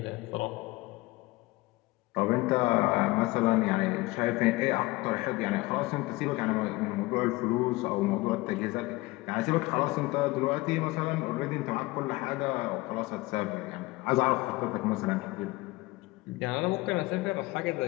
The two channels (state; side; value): quieter; right; 21.2 dB